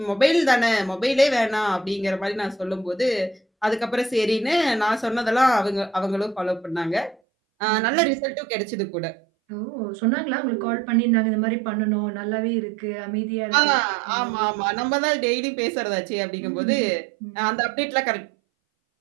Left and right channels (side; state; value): left; drops out; at 7.2 s